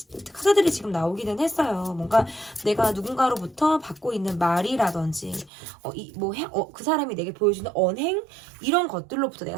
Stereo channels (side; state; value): left; drops out; at 5.5 s